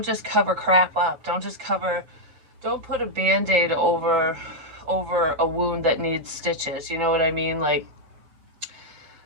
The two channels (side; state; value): left; late; 7.5 ms